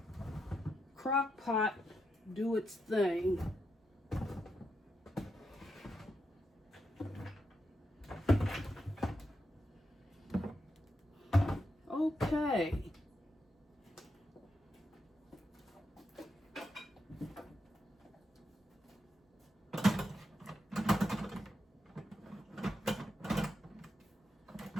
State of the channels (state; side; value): normal; both; correlation 0.84